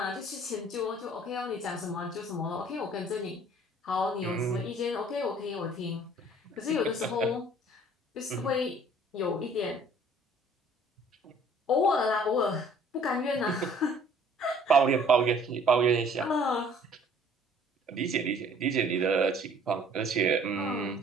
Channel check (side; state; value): both; normal; correlation 0.55